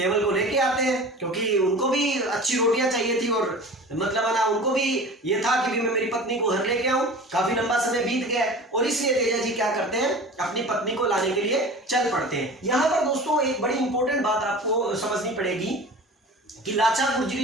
को लेके आते हैं, क्योंकि उनको भी अच्छी रोटियां चाहिए थी, और मतलब ना उनको भी ये था कि भी मैं मेरी पत्नी को घर लेके आऊं। काफी लंबा समय बीत गया और इसलिए तेजा जी क्या करते हैं, अपनी पत्नी को लाने के लिए चल पड़ते हैं। यहाँ पर दोस्तों एक बड़ी इंपॉर्टेंट बात आपको समझनी पड़ेगी कि लाचा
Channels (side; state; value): both; normal; correlation 0.38